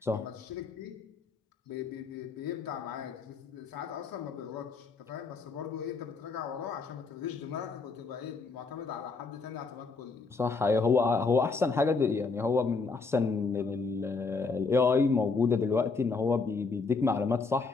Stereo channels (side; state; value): right; quieter; 4.4 dB